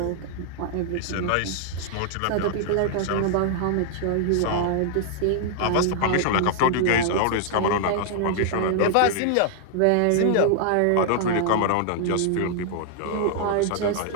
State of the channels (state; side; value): different; both; correlation 0.00